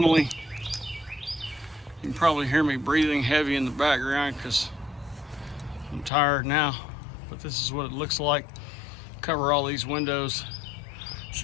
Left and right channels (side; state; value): right; drops out; at 6.1 s